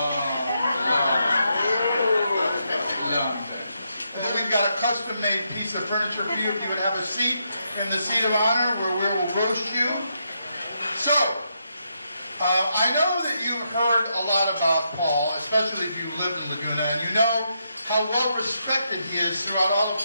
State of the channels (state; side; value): inverted; both; correlation -0.80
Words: time. And then we've got a custom-made piece of furniture for you. If you would have a seat in the seat of honor where we will roast you. So, I know that you've heard a lot about Paul, especially if you live in Laguna, and you know how well respected he is throughout all of